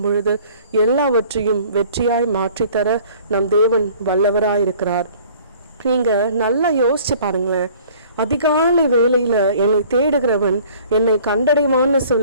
பொழுது எல்லாவற்றையும் வெற்றியாய் மாற்றித்தர நம் தேவன் வல்லவராயிருக்கிறார். நீங்க நல்லா யோசிச்சு பாருங்களேன். அதிகாலை வேளையில என்னை தேடுகிறவன் என்னை கண்டடைவான்னு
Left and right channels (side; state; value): both; inverted; correlation -0.52